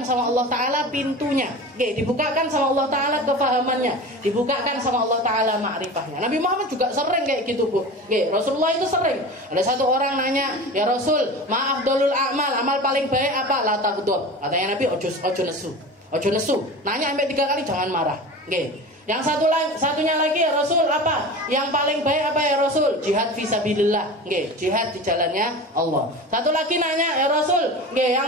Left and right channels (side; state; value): both; normal; correlation 0.33